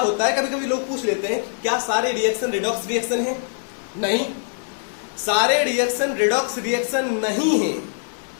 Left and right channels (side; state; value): right; silent; 57 dB below the other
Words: है। कभी कभी लोग पूछ लेते हैं क्या सारे रिएक्शन रिडॉक्स रिएक्शन है? नहीं, सारे रिएक्शन रिडॉक्स रिएक्शन नहीं है।